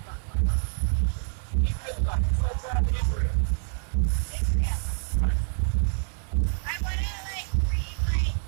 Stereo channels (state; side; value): silent; left; 59 dB below the other